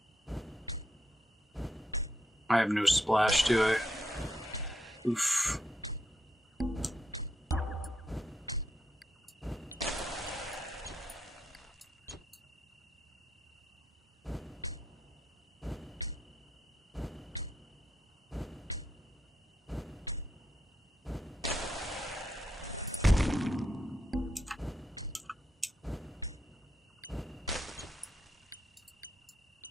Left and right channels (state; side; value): normal; both; correlation 0.80